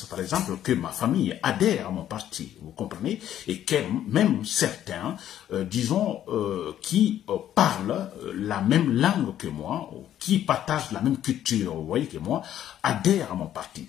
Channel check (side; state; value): right; quieter; 11.3 dB